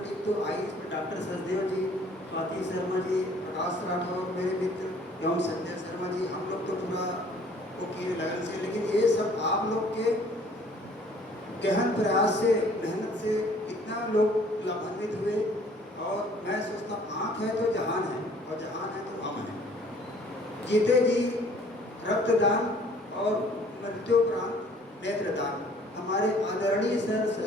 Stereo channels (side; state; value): both; normal; correlation 0.56